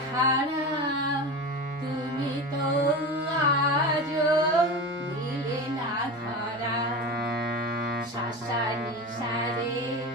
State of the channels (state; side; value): normal; both; correlation 0.27